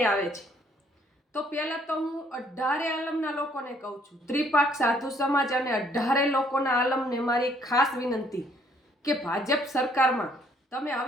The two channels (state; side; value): normal; both; correlation 0.64